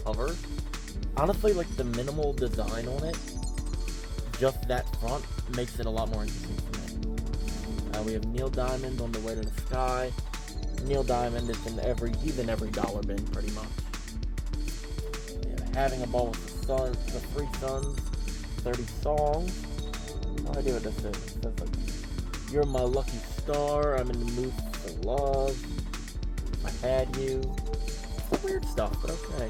cover. Honestly, like the minimal design on it, just that front, makes it a lot more interesting for me. We have Neil Diamond on The Way to the Sky. Neil Diamond is he's in every dollar bin pretty much. Having a Ball with the Three Sons, 30 songs. No idea what this is. It says like, You're My Lucky Star, I'm in the Mood for Love, If I Had You. It's weird stuff, but okay.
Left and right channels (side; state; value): both; identical; correlation 1.00